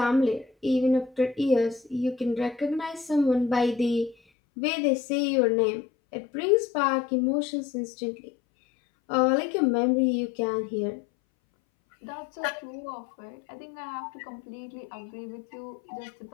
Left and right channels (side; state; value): right; drops out; at 4.2 s